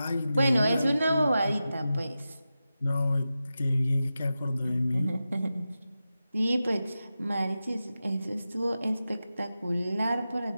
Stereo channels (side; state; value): both; inverted; correlation -0.92